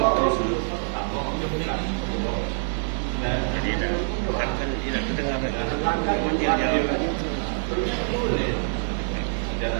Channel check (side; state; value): left; silent; 57 dB below the other